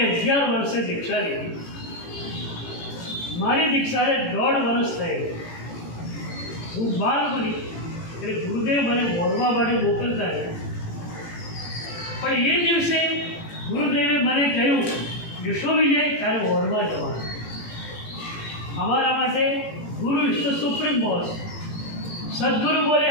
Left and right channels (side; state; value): right; late; 18 ms